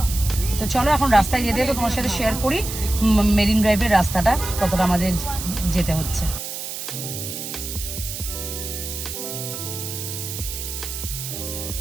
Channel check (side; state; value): right; noise; hiss, 7 dB below the sound